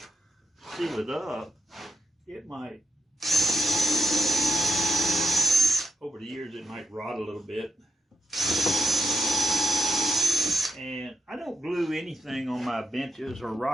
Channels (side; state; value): both; normal; correlation 0.85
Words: seal it up, it might, over the years, it might rot a little bit. And I don't glue anything on my benches or